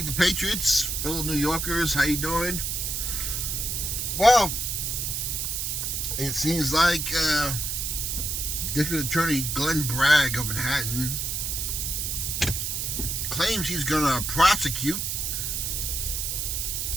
and Patriots, fellow New Yorkers, how you doing? Well, it seems like District Attorney Glenn Bragg of Manhattan claims he's going to prosecute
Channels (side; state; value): right; noise; hiss, 1 dB below the sound